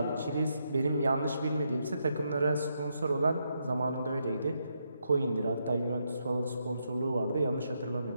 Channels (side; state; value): both; inverted; correlation -0.80